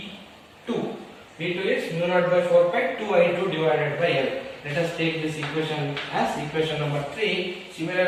B2 is mu naught by 4 pi 2I2 divided by L. Let us take this equation as equation number 3.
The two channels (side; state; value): both; identical; correlation 1.00